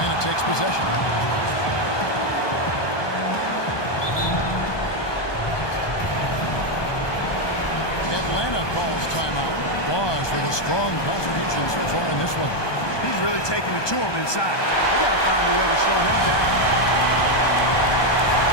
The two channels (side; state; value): right; late; 1.2 ms